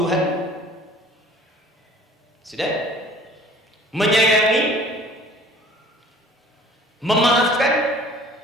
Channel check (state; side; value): normal; both; correlation 0.49